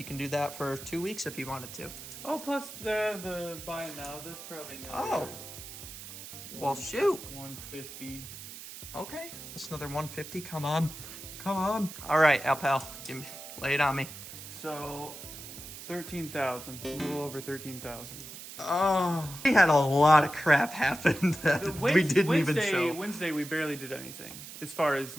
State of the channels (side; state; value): right; noise; hiss, 12 dB below the sound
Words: can do that for 2 weeks if he wanted to. Oh, plus the buy it now. That's probably another. Oh. Well, shoot. 150. Okay, that's another 150. Come on, come on. All right, Alpal, lay it on me. So, 13,000. A little over 13,000. Oh, we had a lot of crap happen that we didn't even show. Wednesday, we barely did anything as far as